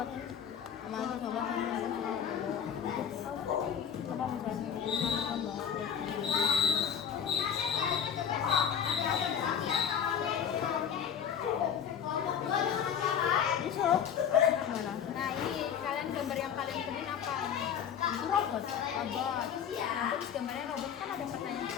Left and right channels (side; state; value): right; quieter; 8.2 dB